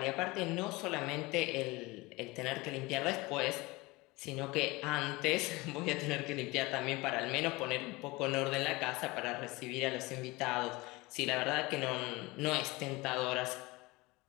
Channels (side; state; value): right; quieter; 22.7 dB